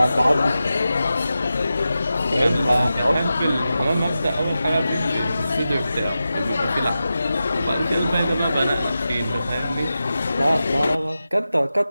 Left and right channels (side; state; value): both; inverted; correlation -0.92